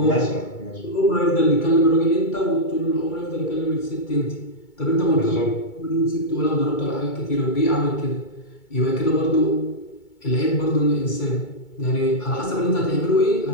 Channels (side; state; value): right; late; 2.2 ms